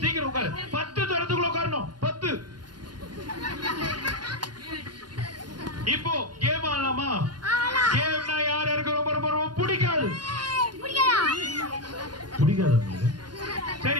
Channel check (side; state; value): left; late; 0.70 ms